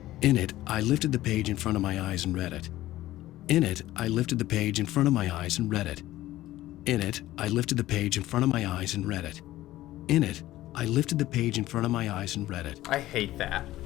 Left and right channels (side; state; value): right; quieter; 15.6 dB